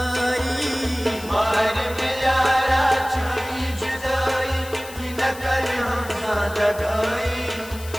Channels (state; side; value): noise; left; hiss, 16 dB below the sound